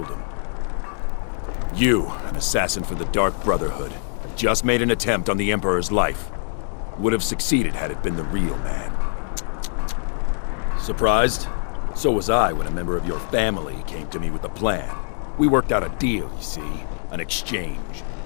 him. You, an assassin for the Dark Brotherhood, have just made an attempt on the Emperor's life. Would have succeeded had it been the real man. Surprised? So was I when a member of your family came to me with a plan. We worked out a deal, you see. An exchange.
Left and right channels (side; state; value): right; silent; digital silence